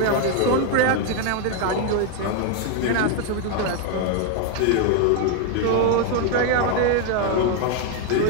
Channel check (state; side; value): different; both; correlation 0.01